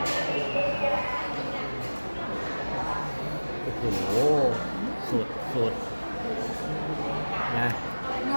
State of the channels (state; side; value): inverted; both; correlation -1.00